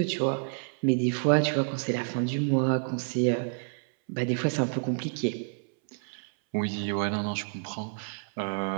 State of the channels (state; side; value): silent; left; 59 dB below the other